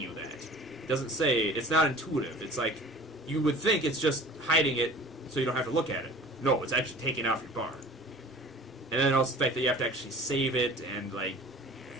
that. It doesn't say, it's not intuitive. It's like, you would think it's just hiding it so you don't have to look at it. No, it's actually taking it off your bar. And then also the fact that you have to actually save it, and like,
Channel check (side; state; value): both; normal; correlation 0.44